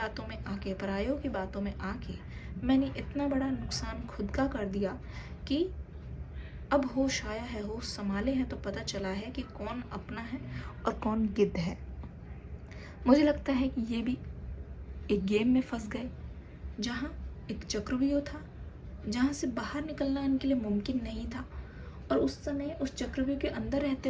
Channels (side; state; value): both; identical; correlation 1.00